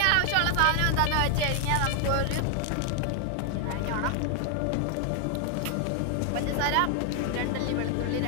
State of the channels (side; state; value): both; different; correlation 0.00